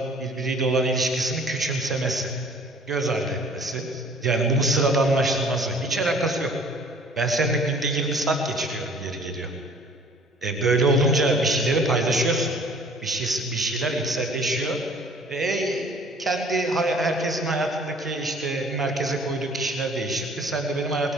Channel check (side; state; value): both; normal; correlation 0.53